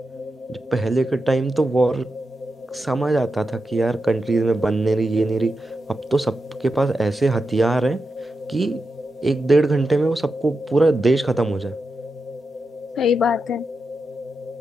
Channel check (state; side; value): normal; both; correlation 0.88